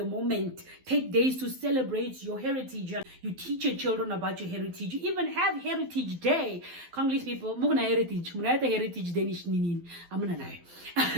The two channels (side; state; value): left; late; 12 ms